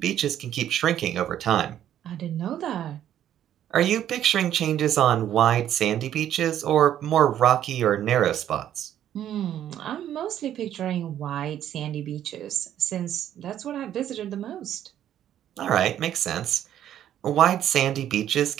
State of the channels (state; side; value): quieter; left; 11.0 dB